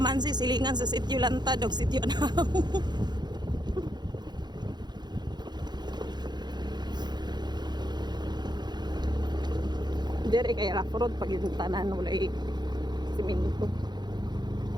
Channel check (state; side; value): late; left; 0.21 ms